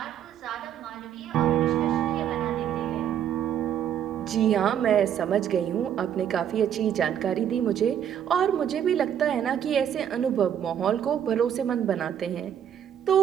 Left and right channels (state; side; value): quieter; left; 9.6 dB